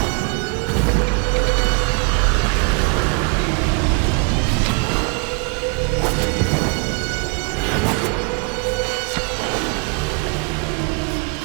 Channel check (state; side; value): quieter; left; 35.2 dB